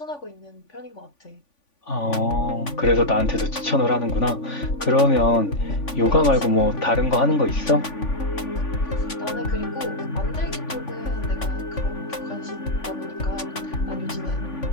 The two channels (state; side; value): late; right; 3.5 ms